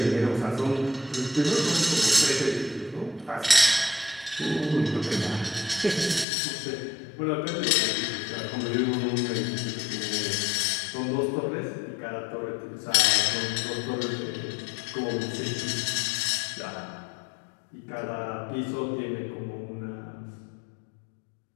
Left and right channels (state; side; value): drops out; right; at 6.2 s